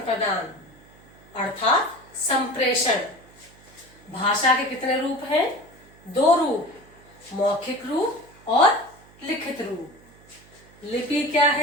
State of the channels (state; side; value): noise; right; hum, 26 dB below the sound